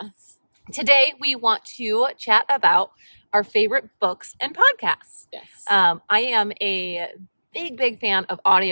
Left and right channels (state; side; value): inverted; both; correlation -1.00